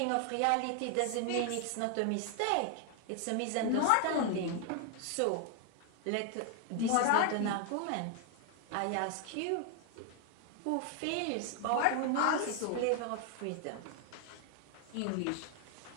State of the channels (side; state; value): both; different; correlation 0.00